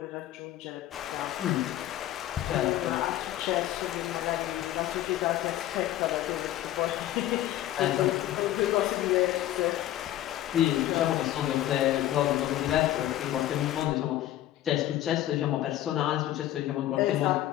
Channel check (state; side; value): quieter; right; 13.6 dB